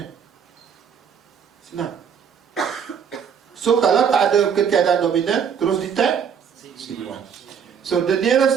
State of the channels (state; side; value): quieter; left; 7.3 dB